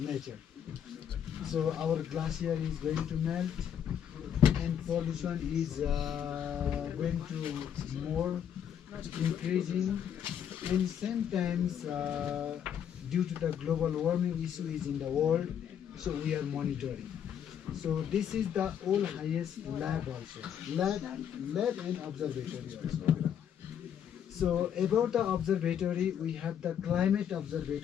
So our glacier is going to melt and pollution is going to more increasing, and sometimes due to the global warming issue is in the world, so we are monitoring. So this is the all highest lab also, lab and observatory also. So about the observatory, we have the climate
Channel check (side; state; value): right; quieter; 8.9 dB